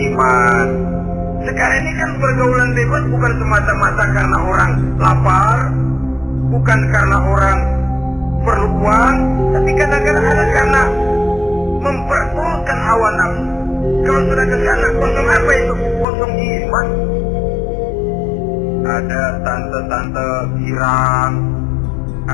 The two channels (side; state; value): right; drops out; at 16.1 s